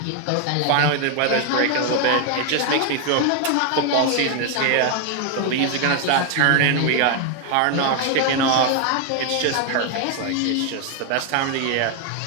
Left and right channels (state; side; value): different; both; correlation 0.01